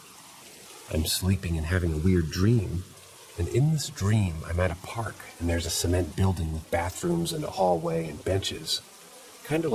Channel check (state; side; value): identical; both; correlation 1.00